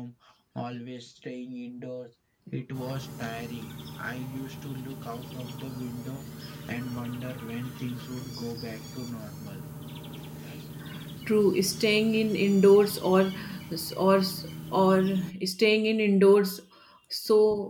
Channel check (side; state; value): both; identical; correlation 1.00